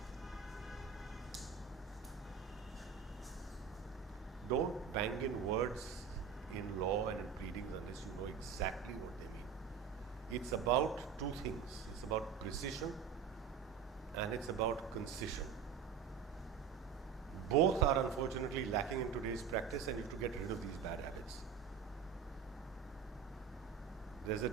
Don't bang in words in law and in pleadings unless you know exactly what they mean. It's about two things. It's about precision and it's about concision. Both are unfortunately lacking in today's practice, and you have to get rid of these bad habits. There's a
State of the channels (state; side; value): quieter; left; 7.1 dB